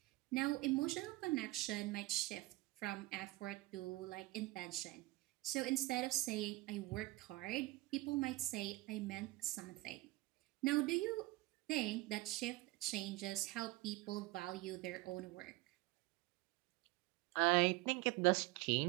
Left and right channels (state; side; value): quieter; left; 20.3 dB